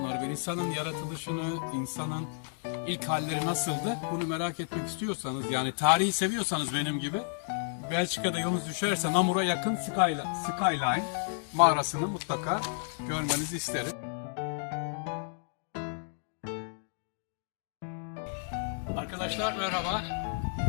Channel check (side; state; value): right; silent; digital silence